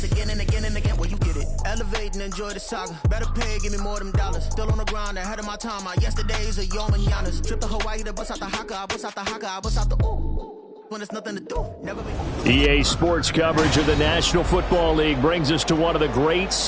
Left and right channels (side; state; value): both; identical; correlation 1.00